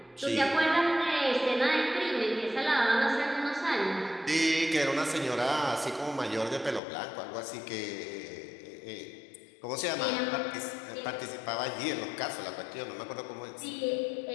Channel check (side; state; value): right; drops out; at 6.8 s